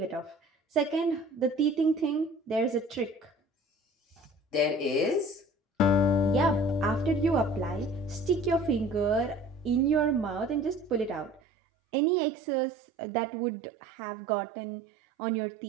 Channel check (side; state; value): left; drops out; at 11.4 s